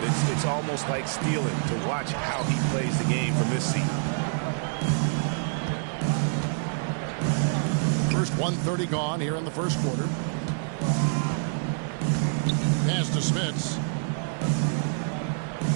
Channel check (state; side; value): silent; left; 60 dB below the other